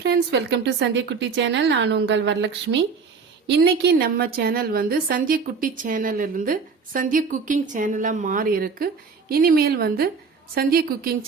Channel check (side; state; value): left; quieter; 5.2 dB